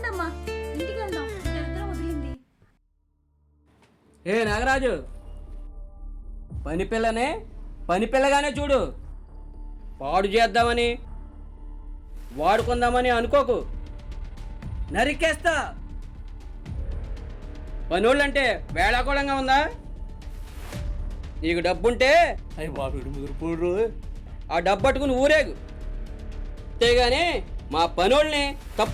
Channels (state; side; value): identical; both; correlation 1.00